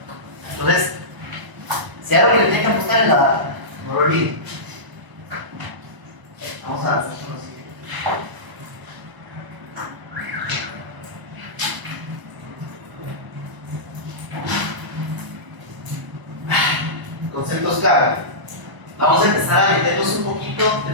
Entonces, si algo que le tiene que apostar es la data, no lo olviden. Vamos a hacer lo siguiente. Conceptos clave. Vamos a empezar a meternos un poquito a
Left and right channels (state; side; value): late; left; 1.0 ms